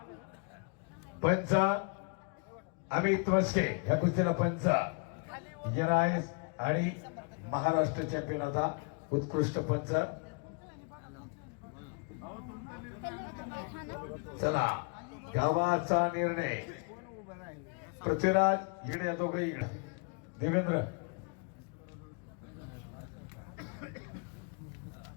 पंच अमित मस्के ह्या कुस्तीला पंच आहे आणि महाराष्ट्र चॅम्पियन आता उत्कृष्ट पंच. चला गावाचा निर्णय. पृथ्वीराज इकडे, दोघे इकडे. देवेंद्र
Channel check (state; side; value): quieter; right; 34.7 dB